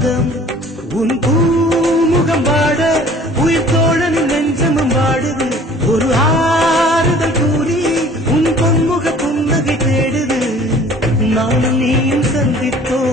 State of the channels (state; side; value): normal; both; correlation 0.50